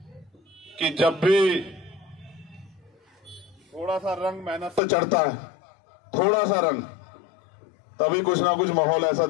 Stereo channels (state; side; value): drops out; right; at 4.8 s